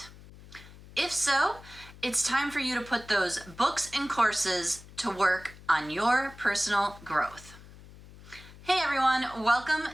If so, it's time for you to put those books and courses to work on your personal growth. Hey everyone,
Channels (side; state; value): left; noise; hum, 19 dB below the sound